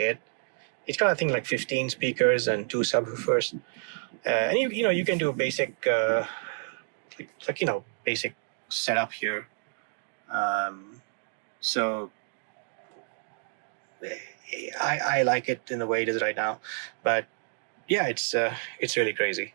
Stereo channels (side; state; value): left; silent; digital silence